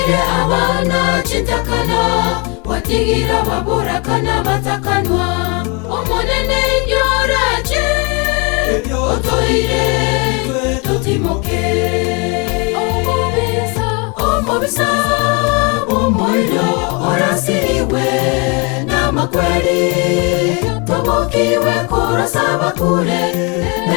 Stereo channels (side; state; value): right; quieter; 31.5 dB